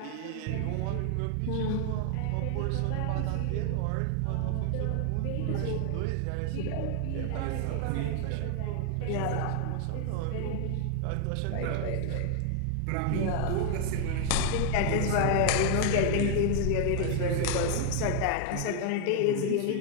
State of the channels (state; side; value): different; both; correlation 0.00